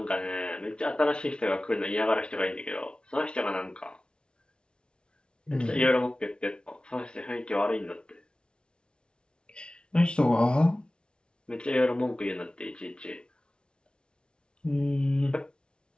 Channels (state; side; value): late; right; 0.056 ms